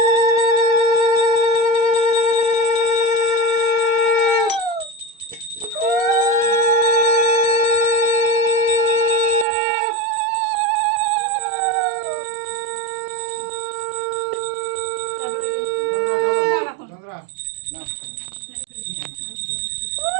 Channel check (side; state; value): left; drops out; at 9.5 s